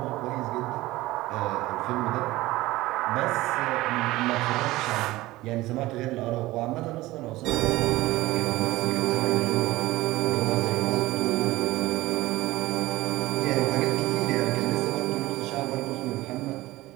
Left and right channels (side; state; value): left; quieter; 18.3 dB